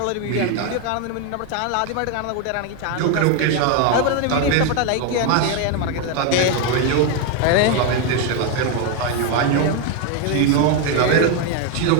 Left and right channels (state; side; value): different; both; correlation 0.01